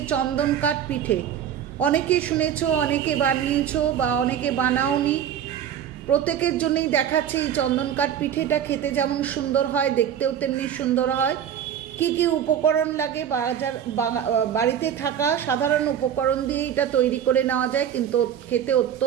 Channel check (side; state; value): left; quieter; 9.3 dB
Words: চন্দন কাঠ পিঠে। অনেকে শুনেছো, অনেকে বানিয়েছো বা অনেকে বানাওনি। প্রত্যেকের জন্যই দেখাচ্ছে এই চন্দন কাঠ পিঠেটা খেতে যেমন সুন্দর হয়, দেখতেও তেমনি সুন্দর হয়। কি কি উপকরণ লাগে, বাড়িতে থাকা সাধারণ উপকরণ দিয়ে এটা তৈরি করে নেওয়া যায়, কিন্তু খেতে